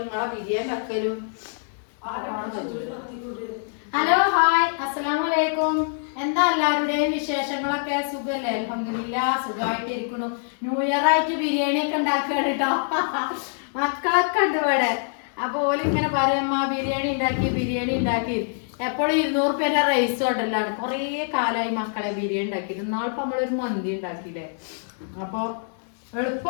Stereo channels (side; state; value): right; silent; digital silence